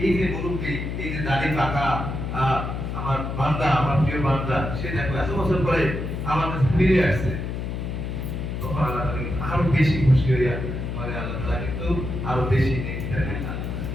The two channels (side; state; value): left; noise; hum, 4 dB below the sound